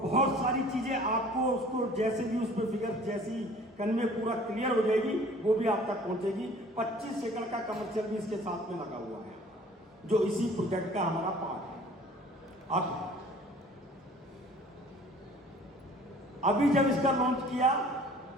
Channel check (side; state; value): both; normal; correlation 0.50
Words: सारी चीजें। आपको उसको जैसे भी उस पर फिगर जैसी कन्वे पूरा क्लियर हो जाएगी वो भी आप तक पहुंचेगी। 25 एकड़ का कमर्शियल भी इसके साथ में लगा हुआ है, जो इसी प्रोजेक्ट का हमारा पार्ट है। अब अभी जब इसका लॉन्च किया